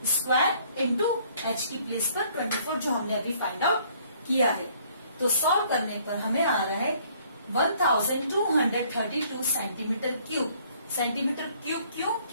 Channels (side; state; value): both; inverted; correlation -0.61